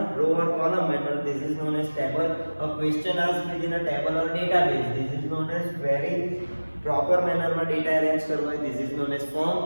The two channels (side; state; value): both; inverted; correlation -1.00